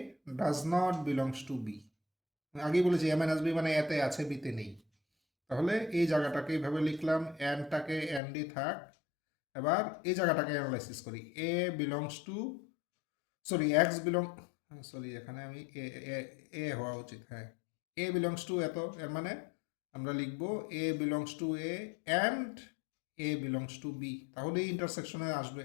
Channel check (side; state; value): right; drops out; at 8.2 s